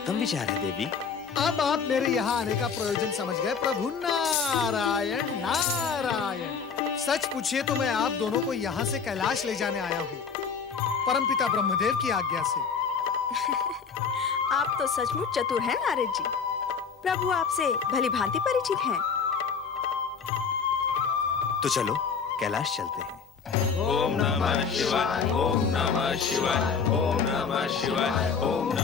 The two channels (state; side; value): quieter; right; 6.0 dB